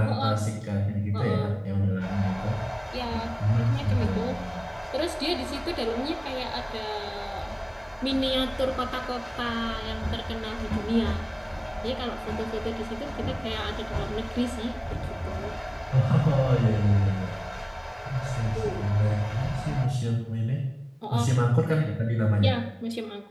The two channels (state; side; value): identical; both; correlation 1.00